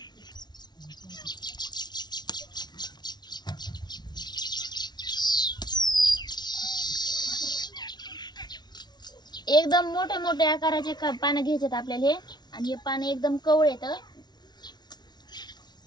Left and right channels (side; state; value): right; late; 0.20 ms